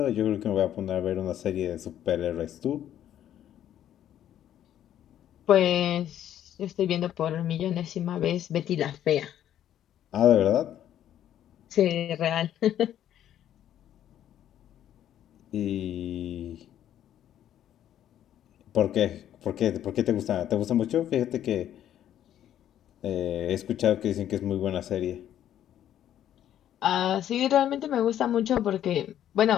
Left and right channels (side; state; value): right; quieter; 11.1 dB